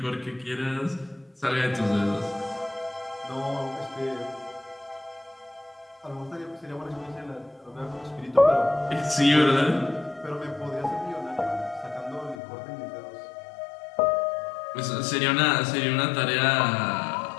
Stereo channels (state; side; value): drops out; right; at 12.4 s